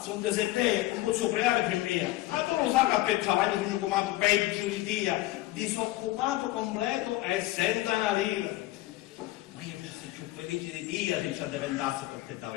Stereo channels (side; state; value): right; quieter; 17.6 dB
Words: sono desertei, non posso pregare per me. Ma tu lo sai che per travaglio sono chiamato peggio di dia, disoccupato completo e senza una lira. Ma io fossi più felice di Dio se ci diventasse perché